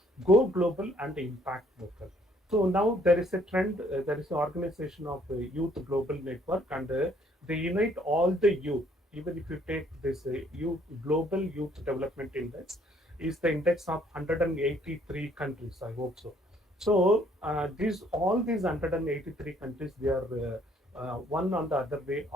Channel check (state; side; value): normal; both; correlation 0.64